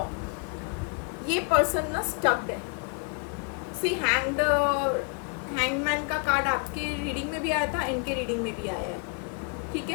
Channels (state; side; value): quieter; right; 35.9 dB